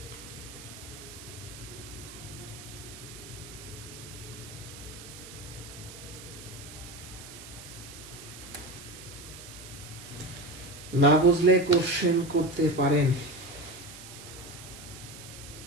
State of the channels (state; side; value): noise; right; hiss, 14 dB below the sound